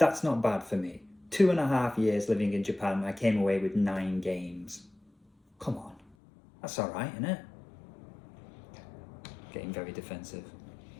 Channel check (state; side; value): drops out; right; at 6.2 s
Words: not bad for me. 2.5 years living in Japan, I came away with 9 games. Come on, that's alright, isn't it? Getting very defensive.